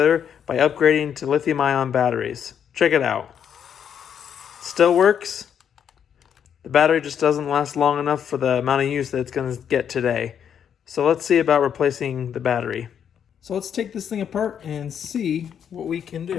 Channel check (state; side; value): quieter; right; 8.4 dB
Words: by upgrading to lithium-ion batteries. Check it out. Still works. The battery just doesn't last long enough for the amount of use that it's going to get today. So let's see about replacing the battery. So let's take this thing apart and see what we can